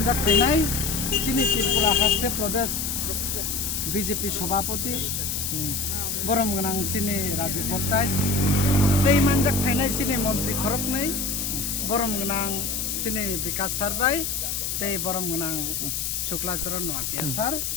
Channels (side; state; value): left; noise; hiss, 2 dB below the sound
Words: ফাইনাই চিনি ত্রিপুরা হাস্তে প্রদেশ বিজেপি সভাপতি বরমগনাং চিনি Rajib বর্তাই Tei manjak phainai sini Mantri Khoroknai Boromgonang sini Vikas Sarbai tei Boromgonang Shukla Sharan Nuatia sar